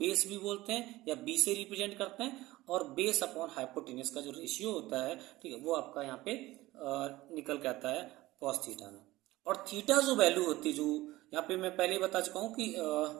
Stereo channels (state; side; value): quieter; left; 18.1 dB